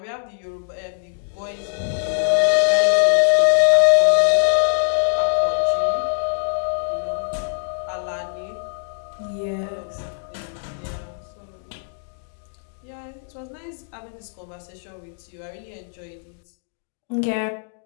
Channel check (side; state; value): right; silent; digital silence